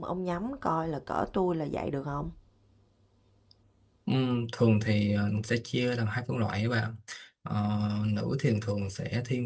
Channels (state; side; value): identical; both; correlation 1.00